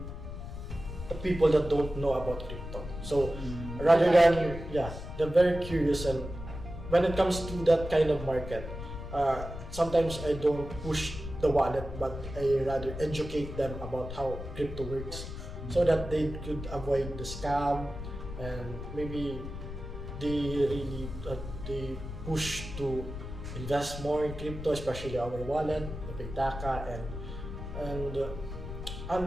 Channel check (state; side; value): noise; left; rumble, 9 dB below the sound